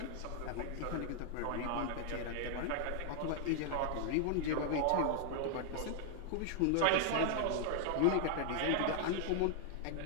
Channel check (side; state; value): both; different; correlation 0.00